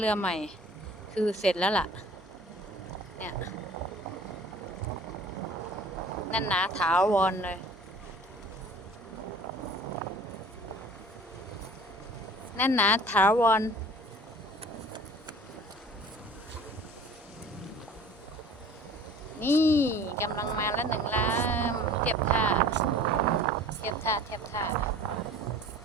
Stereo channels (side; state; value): both; normal; correlation 0.46